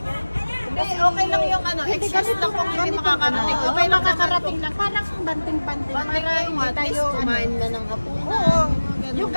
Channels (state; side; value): inverted; both; correlation -1.00